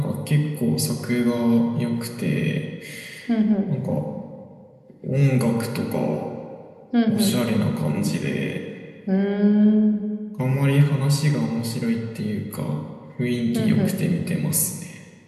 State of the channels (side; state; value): both; identical; correlation 1.00